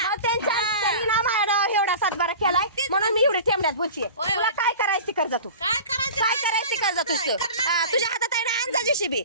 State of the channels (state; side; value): inverted; both; correlation -0.37